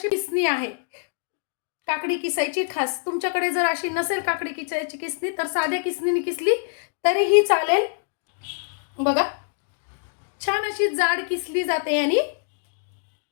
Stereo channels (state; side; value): silent; right; digital silence